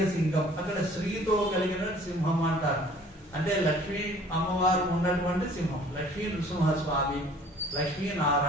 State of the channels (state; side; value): normal; both; correlation 0.52